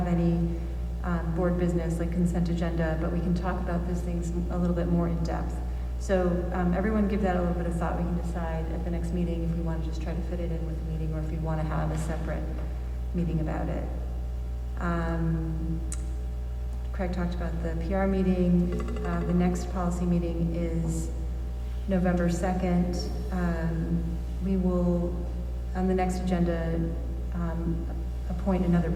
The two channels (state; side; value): identical; both; correlation 1.00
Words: any board business like consent agenda, but we can talk about these things a little bit more in depth. So everyone give that a little bit of thought. We can decide at the next meeting if we want to just try to fit it in with the meeting or if we want to have a separate meeting about it. Craig talked about the PR meeting. The next policy meeting is November 2nd. We will, on the next agenda, appoint another